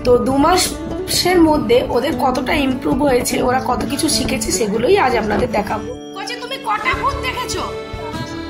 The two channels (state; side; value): identical; both; correlation 1.00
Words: তো 2 মাসের মধ্যে ওদের কতটা ইমপ্রুভ হয়েছে, ওরা কত কিছু শিখেছে, সেগুলোই আজ আপনাদের দেখাবো। তুমি কটা ভূত দেখেছো?